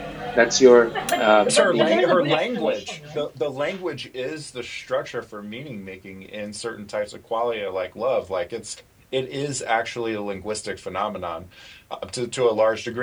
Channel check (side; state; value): both; identical; correlation 1.00